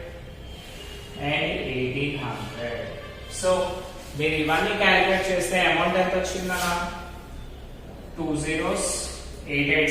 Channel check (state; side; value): identical; both; correlation 1.00